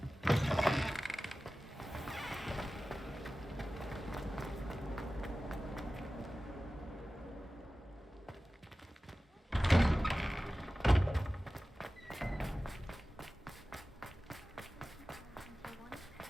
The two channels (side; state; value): both; normal; correlation 0.96